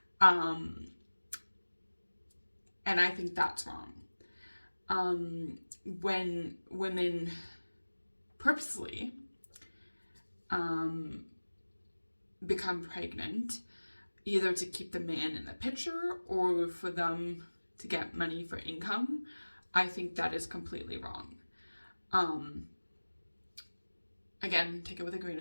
And I think that's wrong. When women purposely become pregnant, either to keep the man in the picture or for them to get money for income, I think that is completely wrong. Again, take it with a grain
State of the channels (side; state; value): both; inverted; correlation -1.00